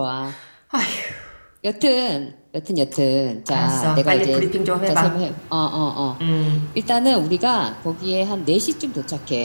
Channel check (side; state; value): both; inverted; correlation -1.00